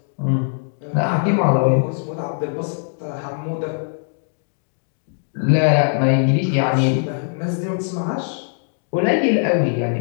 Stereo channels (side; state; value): right; silent; digital silence